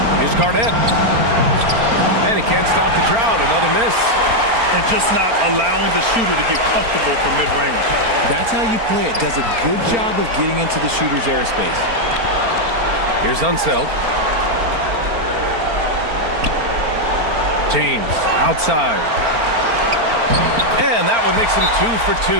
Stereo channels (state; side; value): late; left; 4.4 ms